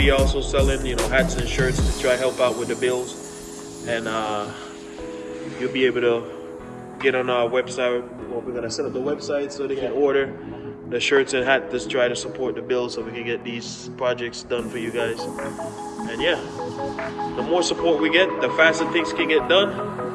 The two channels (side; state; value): both; identical; correlation 1.00